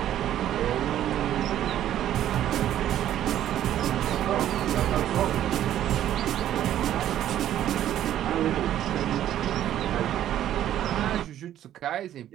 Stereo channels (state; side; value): quieter; left; 11.7 dB